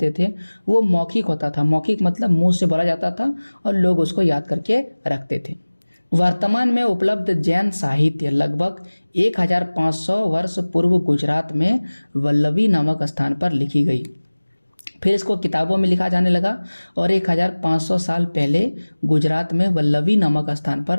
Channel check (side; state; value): both; inverted; correlation -1.00